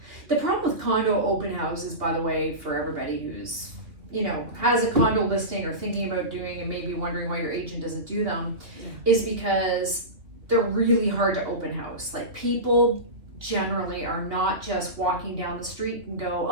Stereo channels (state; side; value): late; left; 2.5 ms